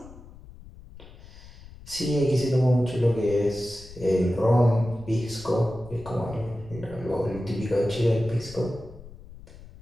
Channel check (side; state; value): left; noise; rumble, 18 dB below the sound